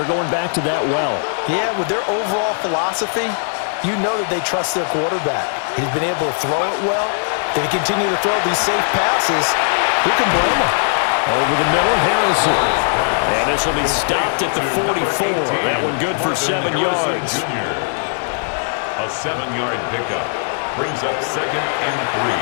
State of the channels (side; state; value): right; silent; 67 dB below the other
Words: going back to that well. Yeah, with their overall philosophy, you know that they trust their quarterback. He's been able to throw it well. They continue to throw these safe passes. Who can blame them? Over the middle, Harrison. And this will be stopped at the 44. That one good for 7 yards. A 7-yard pickup brings up 2nd and 3